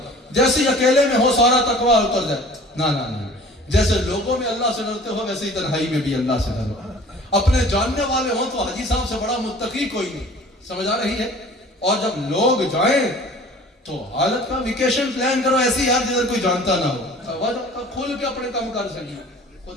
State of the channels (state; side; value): normal; both; correlation 0.47